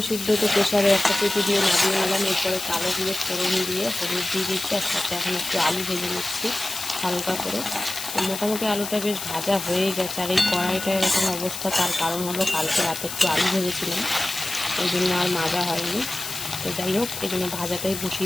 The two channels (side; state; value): left; noise; hiss, 7 dB below the sound